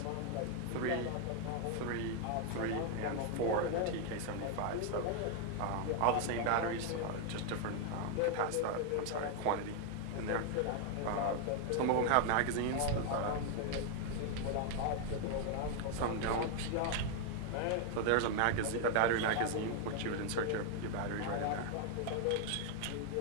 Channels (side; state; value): both; different; correlation 0.00